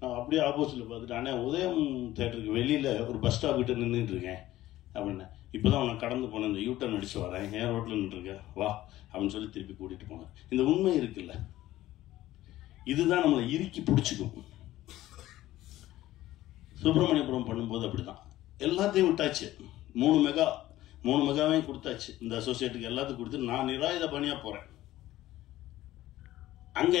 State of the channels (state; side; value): quieter; right; 15.2 dB